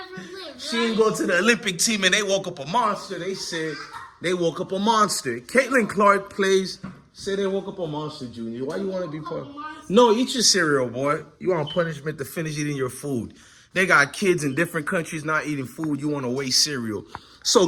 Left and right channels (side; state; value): both; identical; correlation 1.00